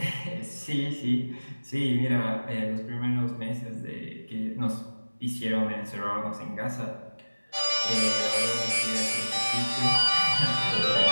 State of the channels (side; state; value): both; inverted; correlation -1.00